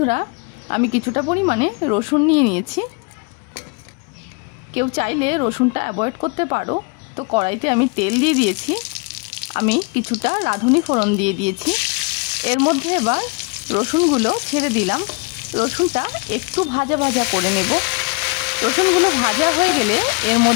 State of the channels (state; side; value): quieter; right; 31.5 dB